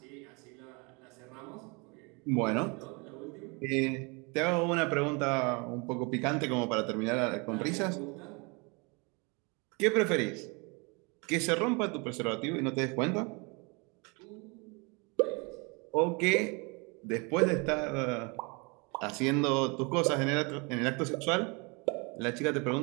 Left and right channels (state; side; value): quieter; left; 29.9 dB